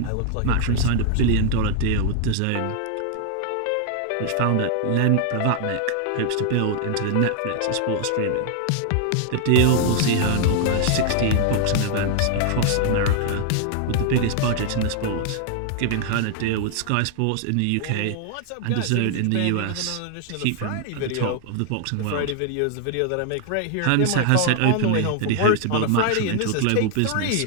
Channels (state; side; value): different; both; correlation 0.00